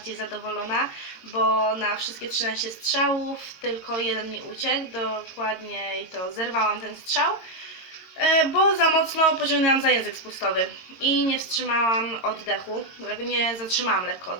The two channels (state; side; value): late; right; 22 ms